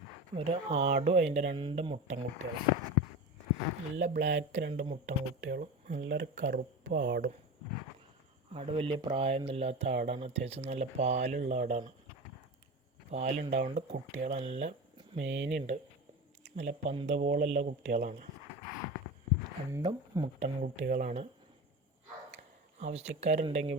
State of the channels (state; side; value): normal; both; correlation 0.28